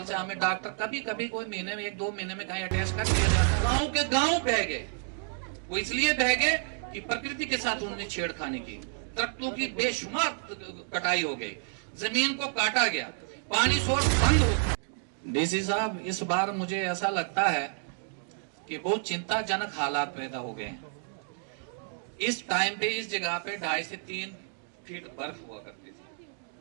से हमें डॉक्टर कभी कोई महीने में 1-2 महीने में कहीं अटैच कर दिया जाता। गांव के गांव बह गए, वो इसलिए बह गए कि प्रकृति के साथ उन्होंने छेड़खानी की, दरख्तों की बेशुमार कटाई हो गई, जमीन को काटा गया, पानी सोर्स बंद हो। डीसी साहब, इस बार मुझे ऐसा लगता है कि बहुत चिंताजनक हालात पैदा हो गए हैं। इस टाइम पे इस जगह पे 2.5 से 3 फीट बर्फ हुआ करती थी,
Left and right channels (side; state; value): left; silent; 58 dB below the other